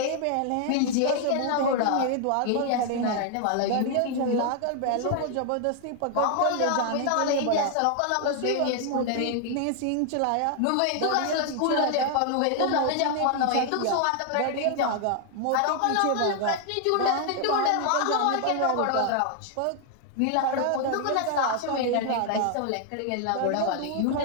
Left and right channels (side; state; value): both; different; correlation 0.00